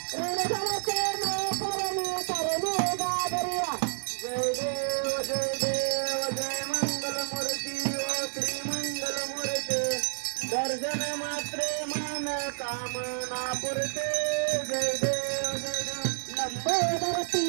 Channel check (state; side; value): silent; left; digital silence